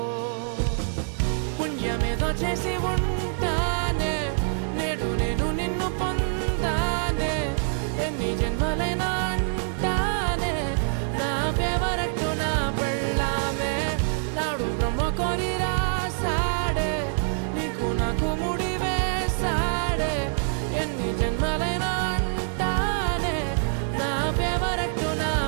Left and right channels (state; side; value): silent; left; digital silence